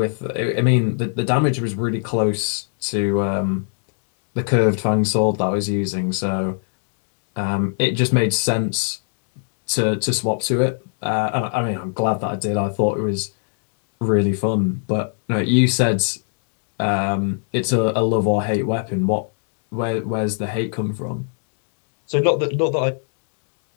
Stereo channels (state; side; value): silent; right; digital silence